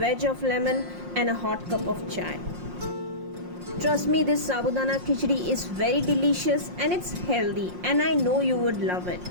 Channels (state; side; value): late; left; 5.6 ms